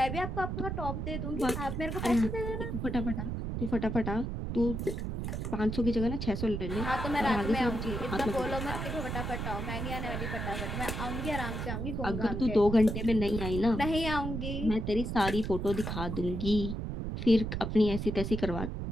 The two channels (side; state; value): right; noise; rumble, 3 dB below the sound